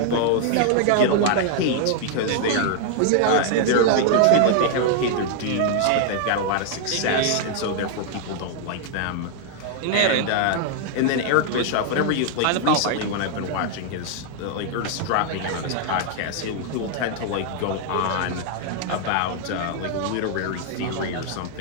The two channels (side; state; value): both; different; correlation 0.00